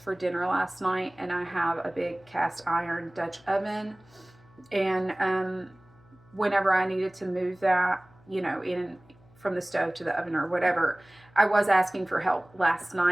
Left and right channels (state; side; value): noise; left; hum, 28 dB below the sound